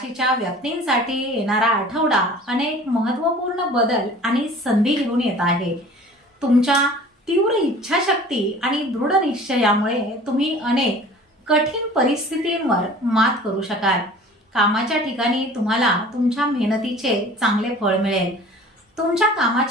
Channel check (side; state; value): both; normal; correlation 0.45